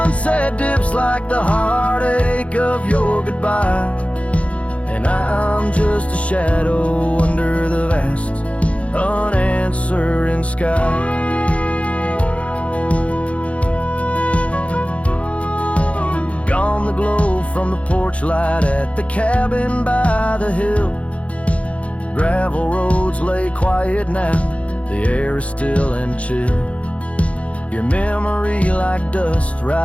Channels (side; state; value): right; late; 0.063 ms